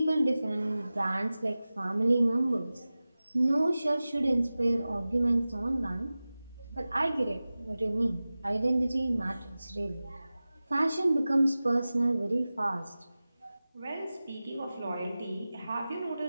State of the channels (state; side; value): inverted; both; correlation -0.97